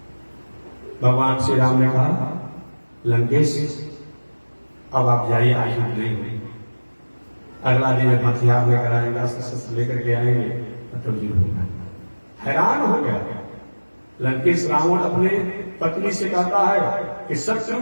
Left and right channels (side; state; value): both; inverted; correlation -1.00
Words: भगवान श्री राम ने कहा लंकेश अब आप जाइए, आयुध नहीं हुई। अगला दिन हथियार लेकर आएगा, शस्त्र लेकर के आएंगे तो युद्ध होगा। हैरान हो गया लंकेश। रावण अपने पत्नी से कहता है कि